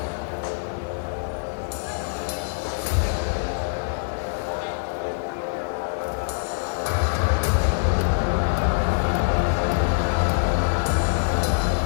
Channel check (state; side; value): silent; right; digital silence